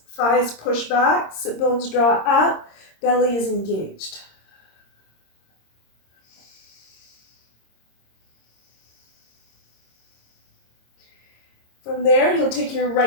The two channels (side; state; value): right; late; 26 ms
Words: thighs push back, sit bones draw up, belly is engaged. From there, you'll take your